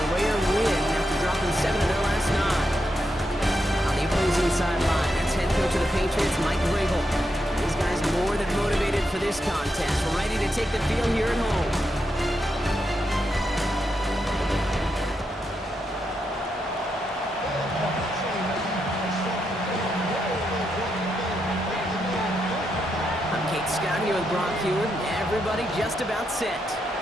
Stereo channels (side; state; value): both; normal; correlation 0.83